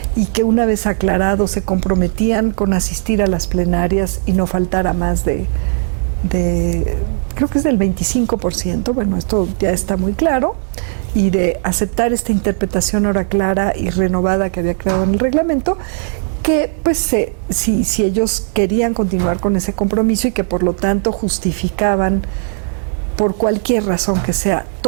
y que una vez aclarado se comprometían con asistir a las plenarias y no faltara más de creo que es del 25%, bueno, esto ya está muy claro, y de aceptar esta interpretación ahora clara y renovada que había creado en el reglamento, que pues si ellos querían continuar con ese compromiso y que por lo tanto justificaban por cualquier razón que sea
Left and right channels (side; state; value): left; silent; digital silence